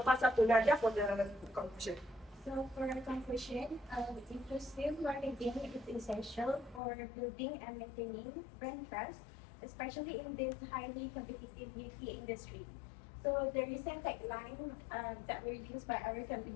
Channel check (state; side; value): drops out; right; at 6.8 s